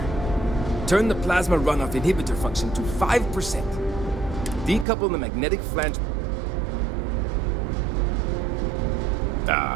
Turn the plasma runoff inhibitor function to 5%. Decouple the magnetic flange...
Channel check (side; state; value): left; drops out; at 4.9 s